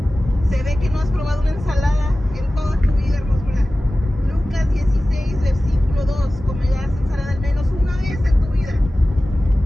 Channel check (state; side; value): normal; both; correlation 0.96